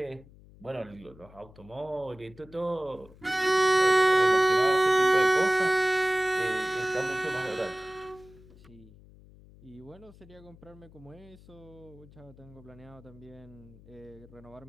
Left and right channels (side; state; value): left; noise; hum, 23 dB below the sound